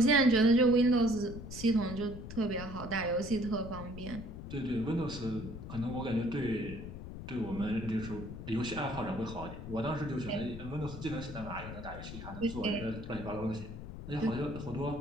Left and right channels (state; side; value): noise; left; rumble, 10 dB below the sound